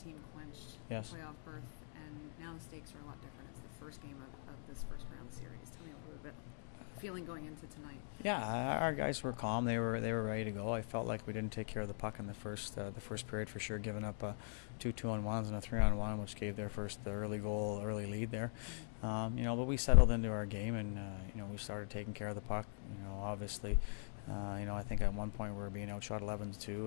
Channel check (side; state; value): right; silent; digital silence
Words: team clinched Yes. the playoff berth, and now the stakes are a lot different. It's the first game of this first round series. Tell me a little bit feeling going into tonight. Yeah, our guys were calm. They were ready to go. I felt like we didn't take care of the puck in the first period for sure, giving up two 2-on-1s and a 3-on-1, which gave their first early lead there. But we settled into our game, and we started taking care of the puck. Obviously, I think at one point we were being outshot